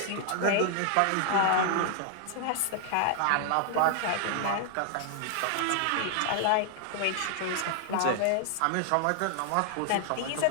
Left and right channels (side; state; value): both; different; correlation 0.00